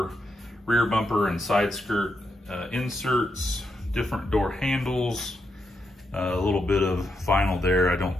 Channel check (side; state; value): both; normal; correlation 0.83